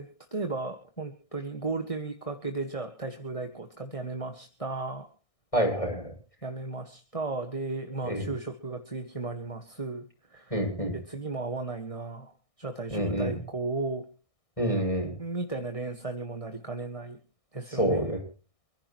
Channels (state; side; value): late; right; 1.6 ms